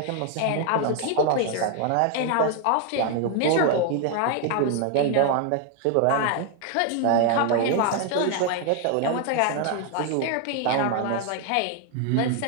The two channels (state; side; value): different; both; correlation 0.00